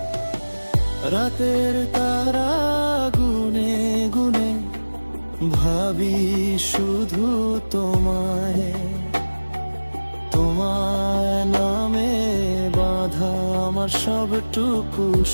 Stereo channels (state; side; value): inverted; both; correlation -1.00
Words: রাতের তারা গুনে গুনে ভাবি শুধু তোমায়, তোমার নামে বাঁধা আমার সবটুকু